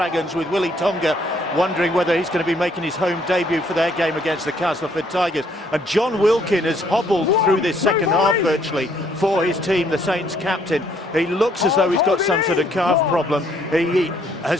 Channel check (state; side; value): normal; both; correlation 0.66